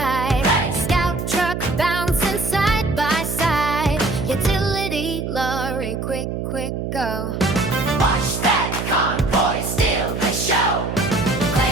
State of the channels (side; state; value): right; noise; hum, 4 dB below the sound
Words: Hey. Scout truck bouncing side by side. Utility lorry, quick, quick, go. watch that convoy steal the show.